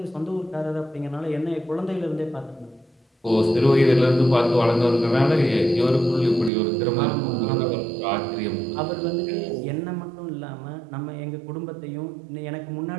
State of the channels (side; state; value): left; drops out; at 6.5 s